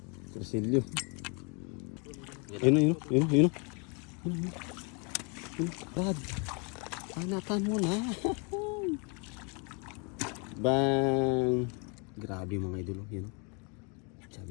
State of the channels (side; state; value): right; quieter; 34.5 dB